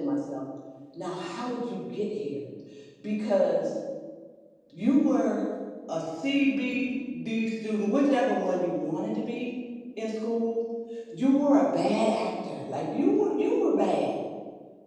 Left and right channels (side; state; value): both; identical; correlation 1.00